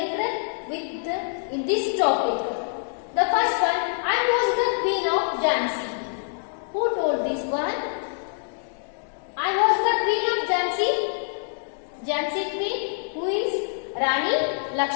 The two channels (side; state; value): right; silent; digital silence